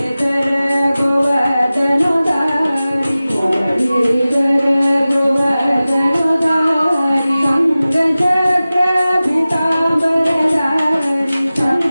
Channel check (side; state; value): both; inverted; correlation -0.96